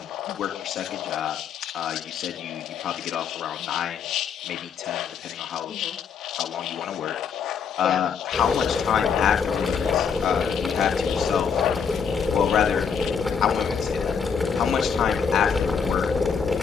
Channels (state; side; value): quieter; right; 6.5 dB